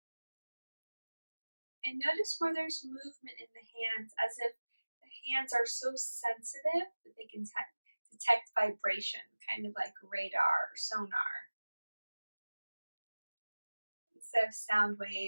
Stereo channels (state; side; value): inverted; both; correlation -1.00